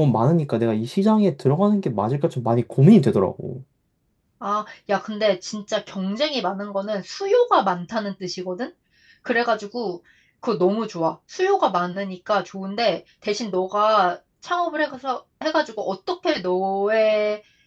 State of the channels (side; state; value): both; identical; correlation 1.00